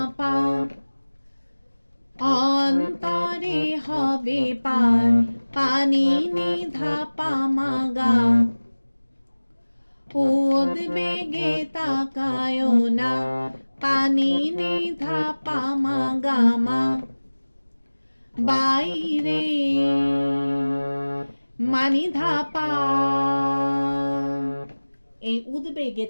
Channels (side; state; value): both; inverted; correlation -1.00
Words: পা, অন্তরে হবে পার পানি নিধা পা মা গা, উদ্বেগে তাকায়ও না পানি নিধা পা মা গা মা বাইরে, মানি ধাপা। এই উদ্বেগে